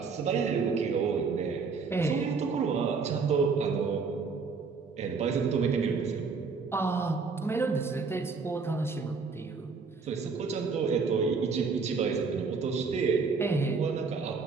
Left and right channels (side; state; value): left; quieter; 4.9 dB